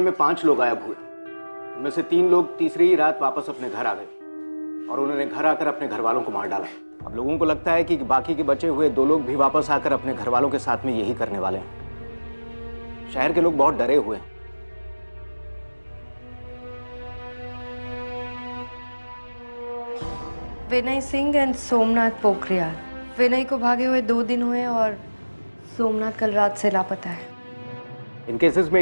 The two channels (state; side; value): inverted; both; correlation -1.00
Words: 5 लोग गायब हुए। उनमें से 3 लोग तीसरी ही रात वापस अपने घर आ गए और उन्होंने घर आकर अपने घर वालों को मार डाला। अब लोगों को लगता है कि बाकी के बचे हुए 2 लोग भी वापस आकर अपने घर वालों के साथ में यही करने वाले हैं। शहर के लोग बहुत डरे हुए हैं। विनय सिंह एंड सोमनाथ पोखरियाल। विनय को भागे हुए 2 दिन हुए और सोमनाथ कल रात से लापता है। इन केसेस में